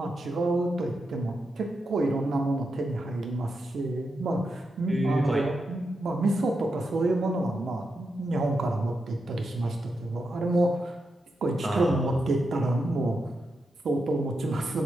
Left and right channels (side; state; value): both; normal; correlation 0.86